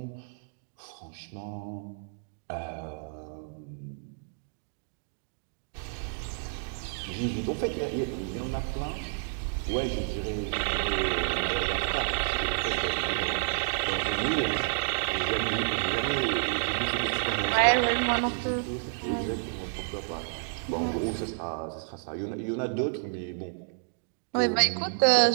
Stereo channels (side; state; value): left; silent; digital silence